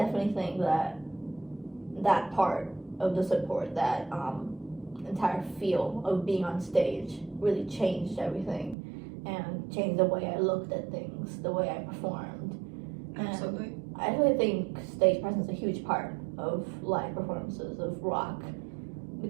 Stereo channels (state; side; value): drops out; left; at 8.8 s